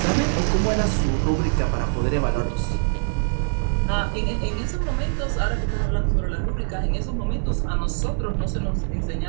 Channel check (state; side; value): silent; left; digital silence